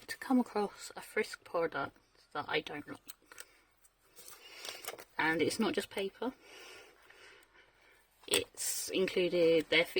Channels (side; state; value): both; identical; correlation 1.00